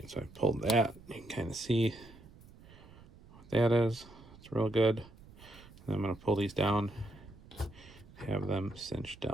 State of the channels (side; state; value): right; noise; rumble, 21 dB below the sound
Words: so I pulled that. You can kind of see what that is. It's real good. And I'm going to pull these down, have them cinch